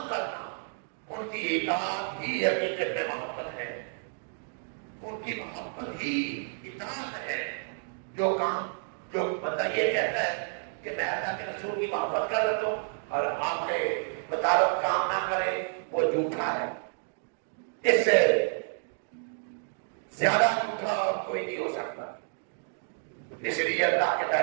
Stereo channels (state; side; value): silent; left; 58 dB below the other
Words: کرنا۔ ان کی اطاعت ہی حقیقت میں محبت ہے، ان کی محبت ہی اطاعت ہے۔ جو کام جو بندہ یہ کہتا ہے کہ میں اللہ کے رسول کی محبت کر لیتا ہوں اور آپ کے مطابق کام نہ کرے، وہ جھوٹا ہے۔ اس سے زیادہ جھوٹا اور کوئی نہیں ہو سکتا۔ اس لیے اللہ کے